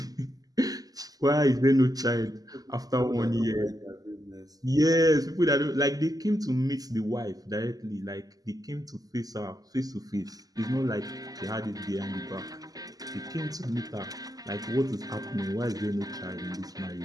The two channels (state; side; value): late; left; 0.18 ms